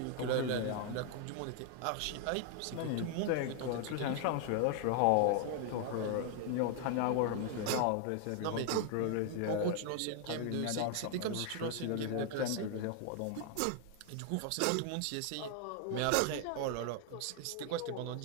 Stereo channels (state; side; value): different; both; correlation 0.00